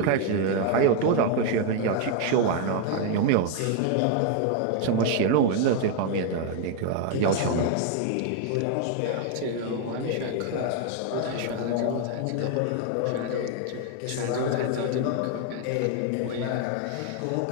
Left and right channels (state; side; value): different; both; correlation 0.00